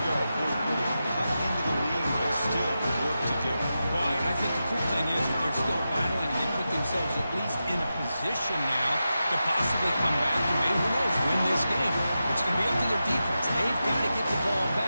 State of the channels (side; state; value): both; inverted; correlation -0.91